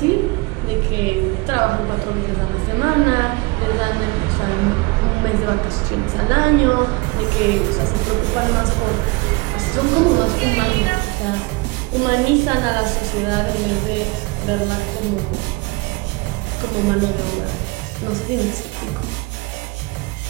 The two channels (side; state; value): left; quieter; 25.2 dB